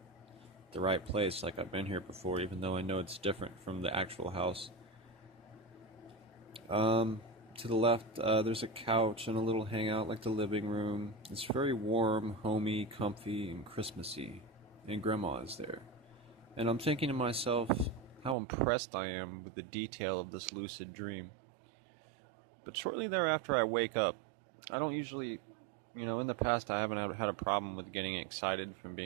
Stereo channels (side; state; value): left; drops out; at 18.4 s